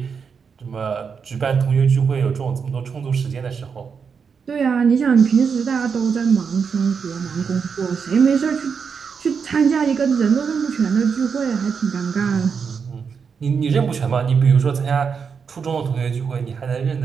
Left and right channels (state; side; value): quieter; left; 6.1 dB